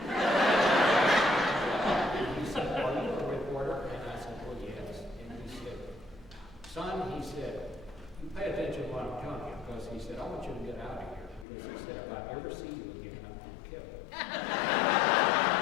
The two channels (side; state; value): right; drops out; at 11.5 s